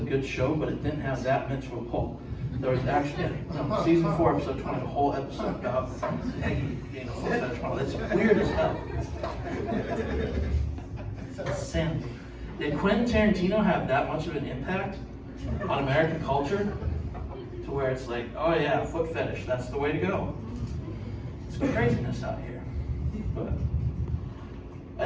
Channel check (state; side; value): identical; both; correlation 1.00